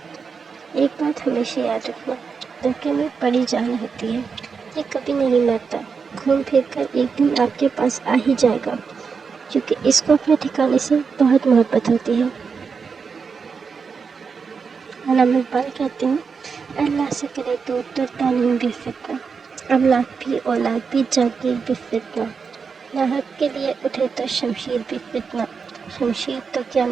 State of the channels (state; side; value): quieter; left; 5.6 dB